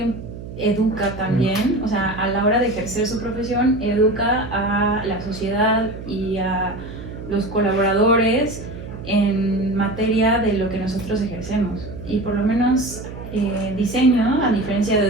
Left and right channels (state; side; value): noise; right; hum, 11 dB below the sound